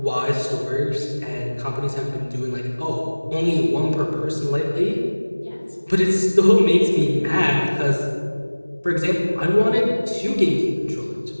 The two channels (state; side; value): inverted; both; correlation -1.00